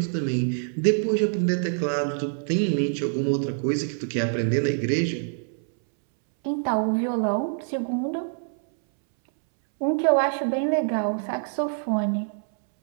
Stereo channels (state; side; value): silent; left; 62 dB below the other